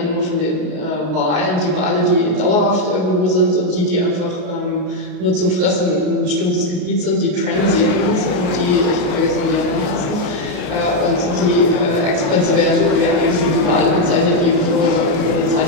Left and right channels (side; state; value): left; late; 33 ms